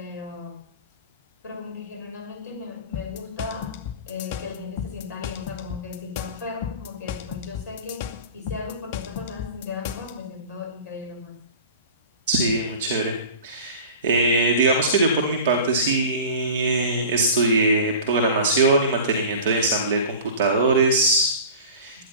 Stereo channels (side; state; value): both; inverted; correlation -0.38